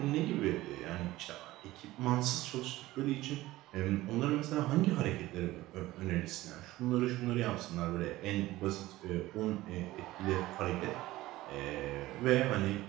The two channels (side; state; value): left; quieter; 17.3 dB